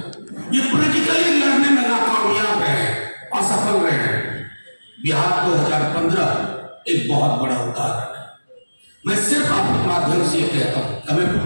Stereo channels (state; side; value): inverted; both; correlation -1.00